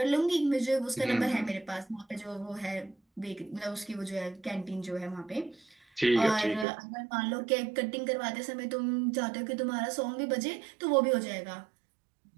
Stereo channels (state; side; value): drops out; left; at 6.7 s